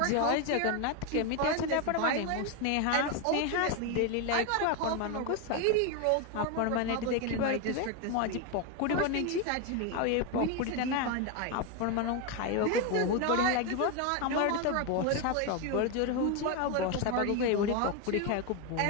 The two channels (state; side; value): different; both; correlation 0.02